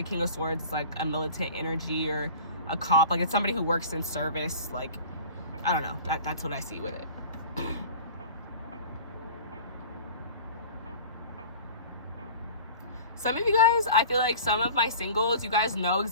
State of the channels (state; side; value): inverted; both; correlation -0.41